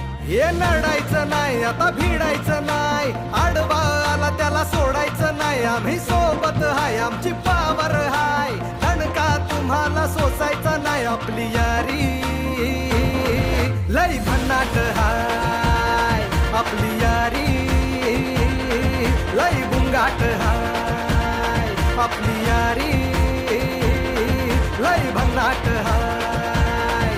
हे लढायचं नाही आता भिडायचं नाही, आडवा आला त्याला सोडायचं नाही. आम्ही सोबत हाय आमची पावर हाय, दणका तुम्हाला सोसायचा नाही. आपली यारी लय भन्नाट हाय, आपली यारी लय गुंगाट हाय. आपली यारी लय भन्नाट हाय,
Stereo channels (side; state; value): both; identical; correlation 1.00